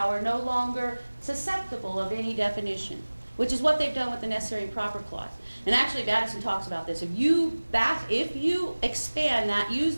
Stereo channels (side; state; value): both; inverted; correlation -1.00